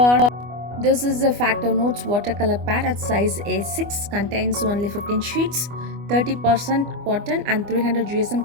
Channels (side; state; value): left; late; 25 ms